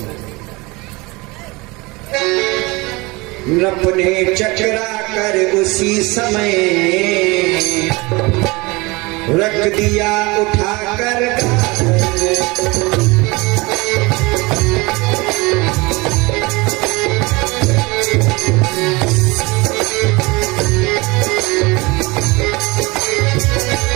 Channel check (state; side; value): quieter; left; 24.4 dB